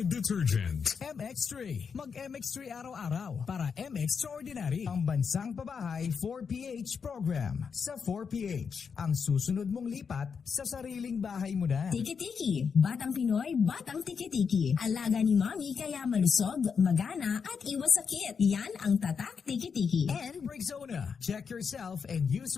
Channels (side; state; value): right; quieter; 6.1 dB